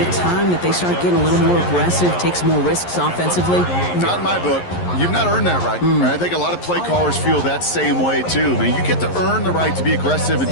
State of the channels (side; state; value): right; late; 11 ms